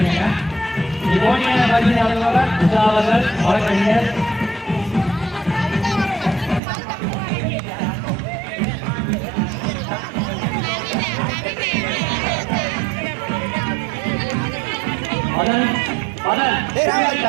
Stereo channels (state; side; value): drops out; left; at 6.6 s